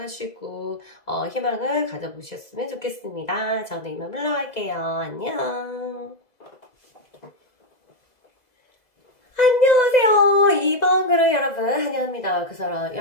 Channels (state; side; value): late; right; 2.0 ms